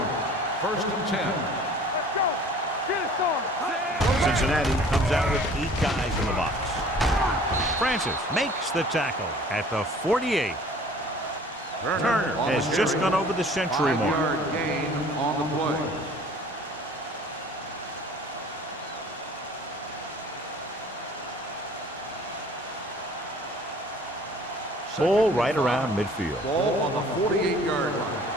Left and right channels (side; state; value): both; normal; correlation 0.50